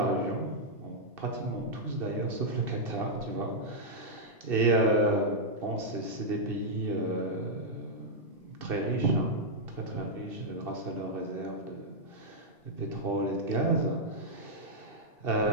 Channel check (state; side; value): late; left; 2.7 ms